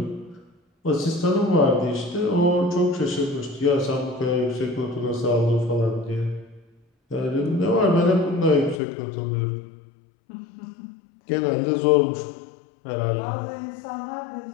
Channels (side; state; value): right; drops out; at 8.8 s